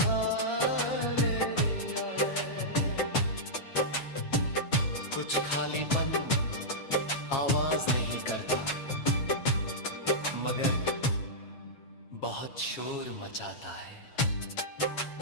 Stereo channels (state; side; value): late; right; 7.3 ms